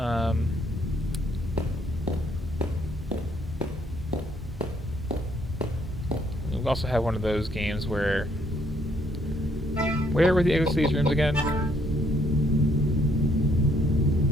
We also have one of those games where... Where were the exits to these rooms again?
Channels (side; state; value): both; normal; correlation 0.68